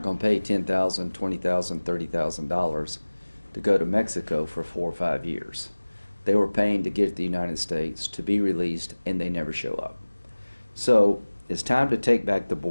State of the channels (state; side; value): inverted; both; correlation -1.00